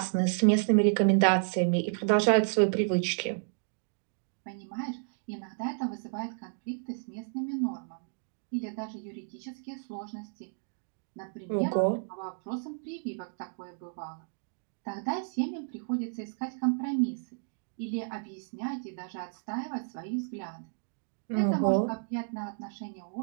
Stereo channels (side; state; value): left; silent; digital silence